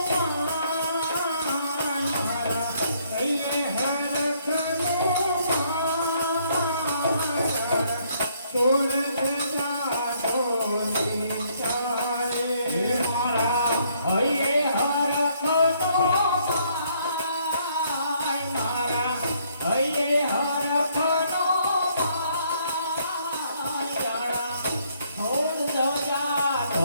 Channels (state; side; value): inverted; both; correlation -0.68